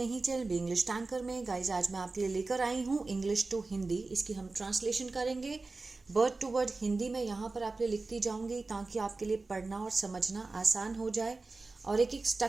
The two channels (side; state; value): left; quieter; 3.6 dB